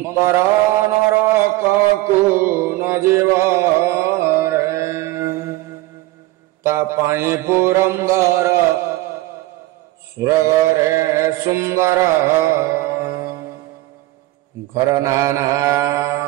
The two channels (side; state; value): left; quieter; 18.0 dB